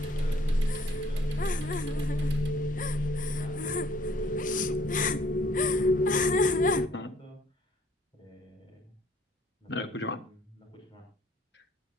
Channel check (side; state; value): both; normal; correlation 0.61